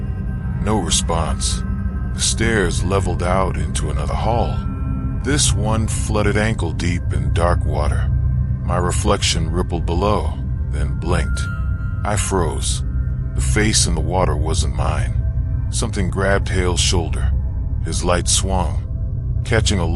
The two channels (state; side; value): identical; both; correlation 1.00